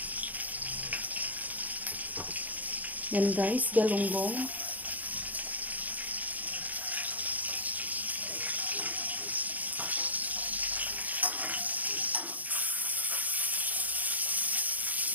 Yan guys, galunggong.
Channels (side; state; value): left; late; 0.079 ms